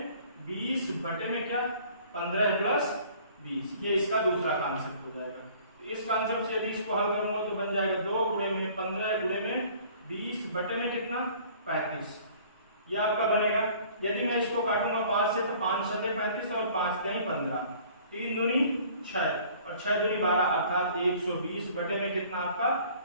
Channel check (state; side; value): inverted; both; correlation -0.52